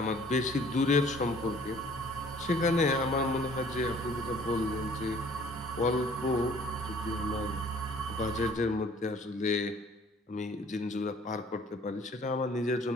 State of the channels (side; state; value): both; normal; correlation 0.54